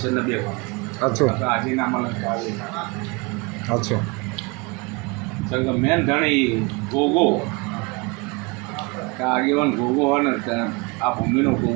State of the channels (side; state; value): left; quieter; 27.7 dB